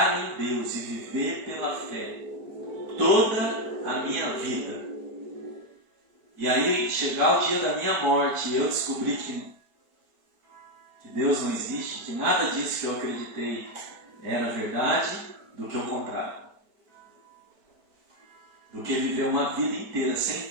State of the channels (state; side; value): late; left; 4.8 ms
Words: em Deus e viver pela fé toda a minha vida. E aí, chegar o dia da minha morte e eu descobrir que Deus não existe, que nada disso que eu acreditei era verdade, do que o contrário. Do que viver uma vida inteira sem